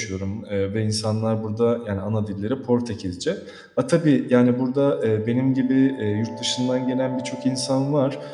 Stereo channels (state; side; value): identical; both; correlation 1.00